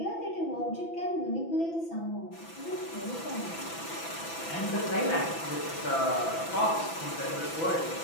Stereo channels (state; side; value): late; right; 6.0 ms